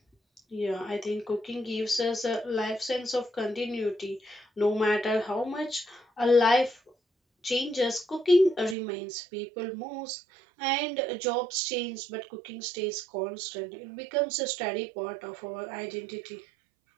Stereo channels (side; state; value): left; drops out; at 8.8 s